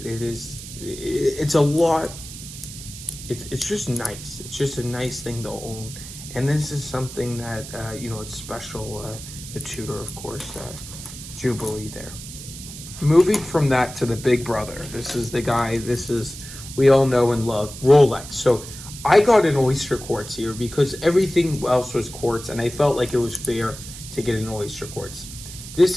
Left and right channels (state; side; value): noise; right; hiss, 13 dB below the sound